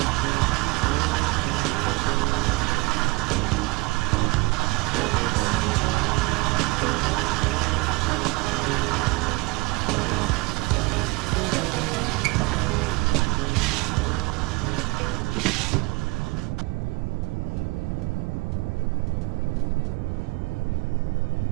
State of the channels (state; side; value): quieter; left; 24.8 dB